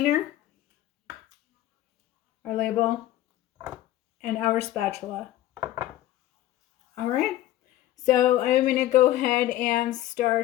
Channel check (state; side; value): quieter; right; 14.2 dB